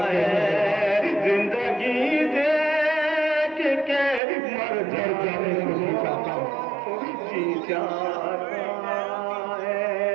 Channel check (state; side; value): drops out; left; at 4.2 s